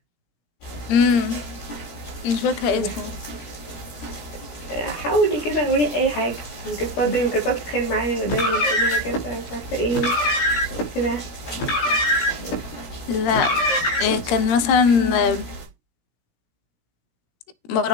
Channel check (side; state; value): right; late; 17 ms